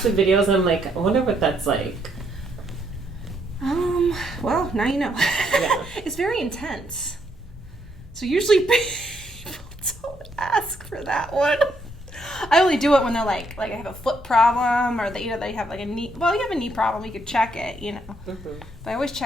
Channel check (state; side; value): normal; both; correlation 0.73